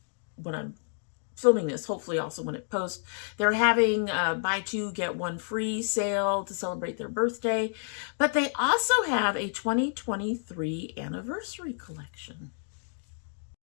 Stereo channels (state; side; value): silent; right; digital silence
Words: when I'm filming this, hopefully also when it posts, they're having buy 2 get 1 free sale to celebrate their birthday, but they also have a 2023 anniversary collection.